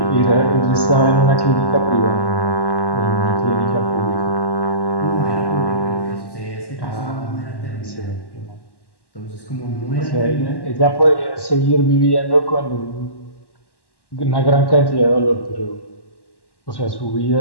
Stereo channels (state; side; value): late; right; 1.1 ms